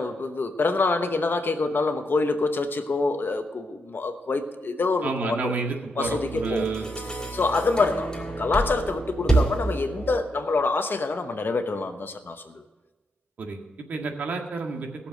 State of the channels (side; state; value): both; normal; correlation 0.80